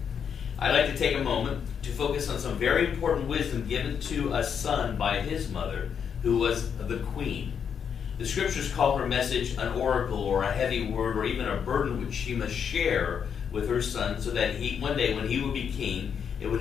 I'd like to take a moment to focus on some very important wisdom given to a son by his mother, who was the queen. The scriptures call her message an oracle or a heavy word or even a burden which she must share with her son so that one day when he will be king, it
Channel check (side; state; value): right; quieter; 7.4 dB